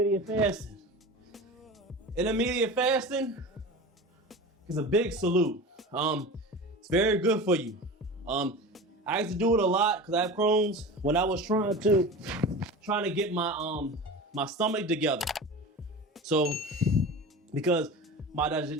fasting? Intermittent fasting is a big salute. It's very good for you. I used to do it a lot because I have Crohn's when I was trying to get my stomach together. So, because my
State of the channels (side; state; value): both; normal; correlation 0.32